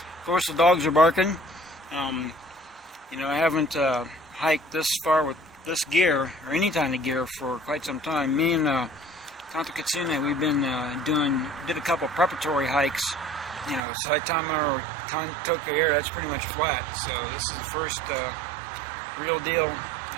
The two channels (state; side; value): drops out; left; at 13.8 s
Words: course, the dogs are barking. You know, I haven't hiked this far with this gear or any kind of gear for quite some time. Me and Kanto Kitsune, we've been did a couple preparatory hikes. You know, Saitama or Kanto Air, that's pretty much flat. So this is the first real deal